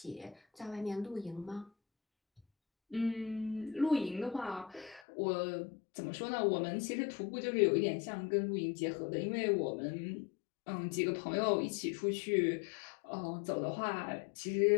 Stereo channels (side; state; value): right; drops out; at 5.0 s